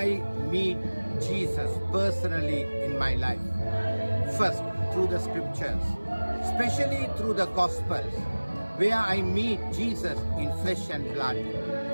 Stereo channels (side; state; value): both; inverted; correlation -1.00